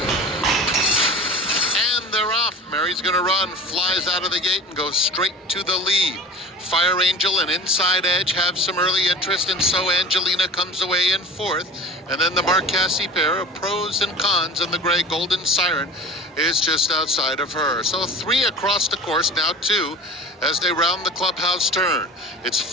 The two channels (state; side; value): normal; both; correlation 0.37